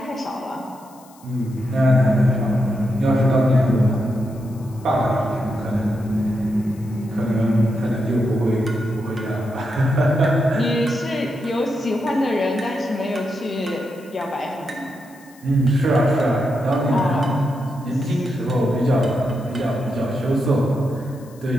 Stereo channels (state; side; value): noise; left; hiss, 26 dB below the sound